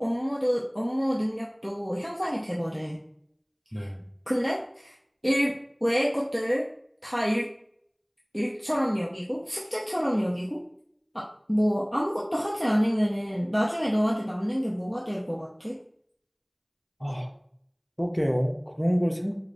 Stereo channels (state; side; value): identical; both; correlation 1.00